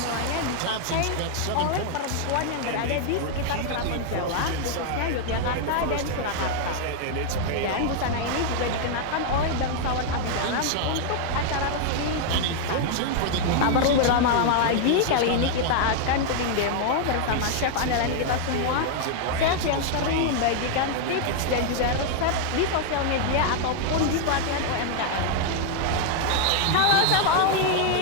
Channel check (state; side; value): different; both; correlation 0.00